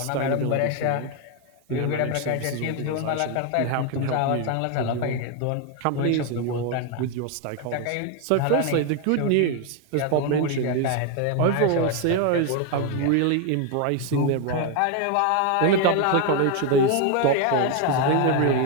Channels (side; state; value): both; different; correlation 0.01